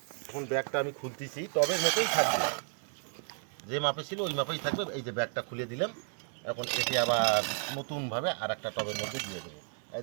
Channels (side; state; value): left; silent; 55 dB below the other